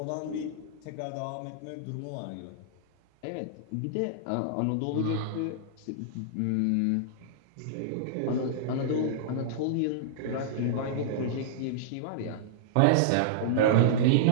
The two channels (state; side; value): different; both; correlation -0.02